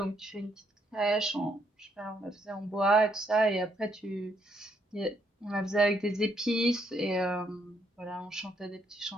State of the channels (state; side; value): normal; both; correlation 0.73